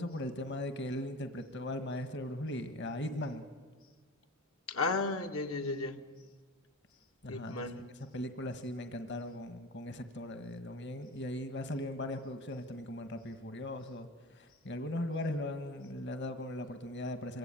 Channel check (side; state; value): both; normal; correlation 0.32